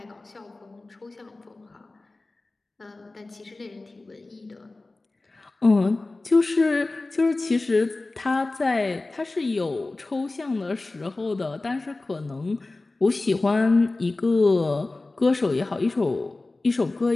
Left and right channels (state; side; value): quieter; right; 3.2 dB